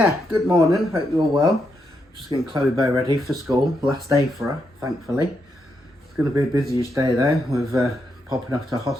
good morning, hope you're all well. Just getting Chloe Bow ready for school, last day for her, thankfully. It's going to be a busyish day though, with popping off to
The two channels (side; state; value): both; normal; correlation 0.81